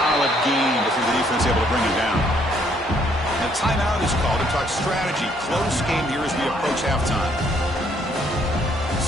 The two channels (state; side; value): normal; both; correlation 0.67